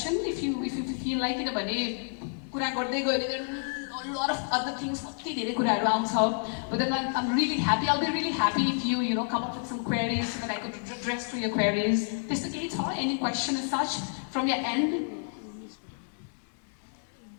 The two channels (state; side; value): silent; right; 58 dB below the other